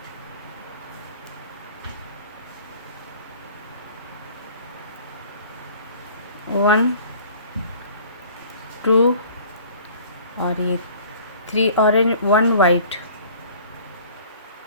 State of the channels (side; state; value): both; inverted; correlation -0.50